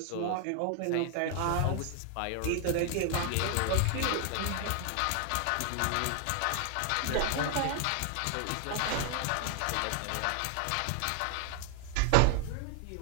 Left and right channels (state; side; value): different; both; correlation 0.00